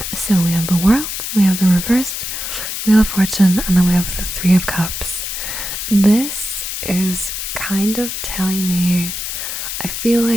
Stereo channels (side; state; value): left; noise; hiss, 5 dB below the sound